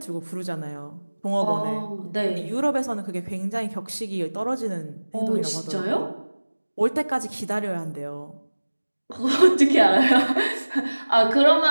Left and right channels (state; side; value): inverted; both; correlation -1.00